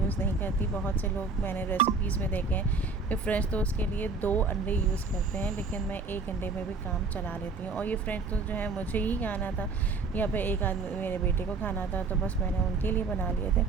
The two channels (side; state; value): left; quieter; 4.3 dB